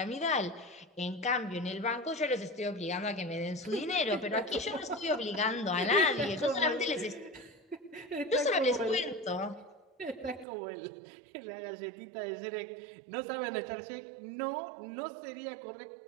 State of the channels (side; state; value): left; drops out; at 10.5 s